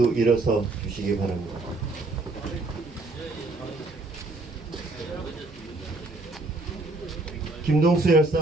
일어서 주시기 바랍니다. 김동수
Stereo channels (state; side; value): quieter; left; 3.1 dB